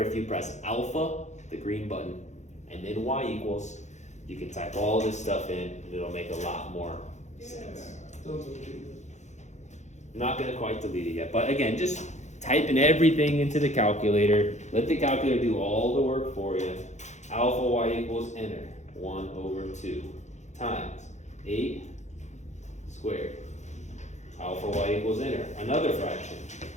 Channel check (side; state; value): right; late; 0.34 ms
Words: if you press alpha, the green button, and then y equals, you can type all this stuff in and it'll make a lot more sense. I'm not gonna quite delete it yet, but again, just type in everything into the calculator. Let the calculator do all the work for you. Alpha y equals, enter, 1/2 times 8 squared. Alpha y equals, enter, another fraction.